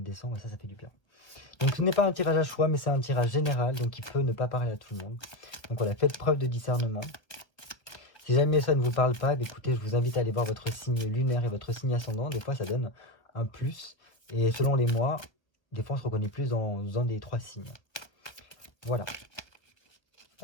décembre. Et ça fait du bien. Donc ce n'est pas un tirage à choix, mais c'est un tirage général, donc il peut ne pas parler à tout le monde. Donc voilà, faites preuve de discernement. Si jamais ça ne vous parle pas, écoutez, je vous invite à aller voir votre signe lunaire et votre signe ascendant. Des fois, ça donne un plus. Et selon les mois, des fois, on se reconnaît plus dans un des trois signes. Voilà.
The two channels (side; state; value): right; late; 1.4 ms